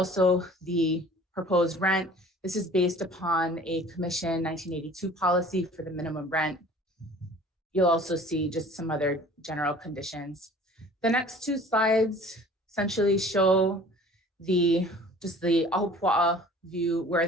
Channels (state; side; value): normal; both; correlation 0.48